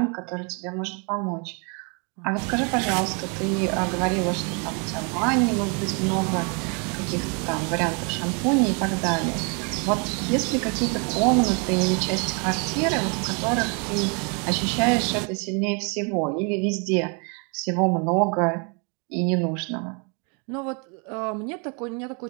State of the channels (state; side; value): quieter; left; 35.3 dB